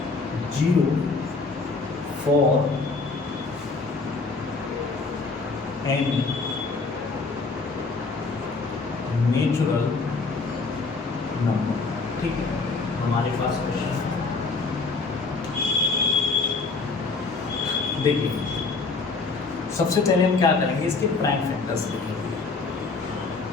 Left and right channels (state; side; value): quieter; right; 4.1 dB